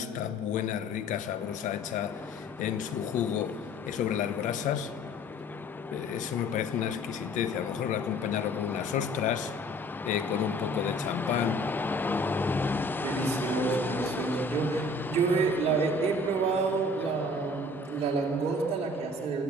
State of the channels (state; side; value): normal; both; correlation 0.50